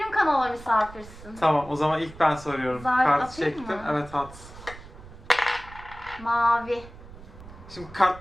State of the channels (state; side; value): noise; right; rumble, 17 dB below the sound